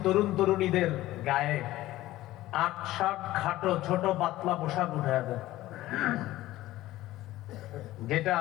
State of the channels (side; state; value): right; quieter; 16.1 dB